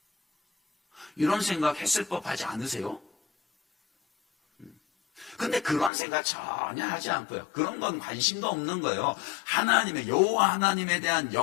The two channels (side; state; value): right; drops out; at 5.9 s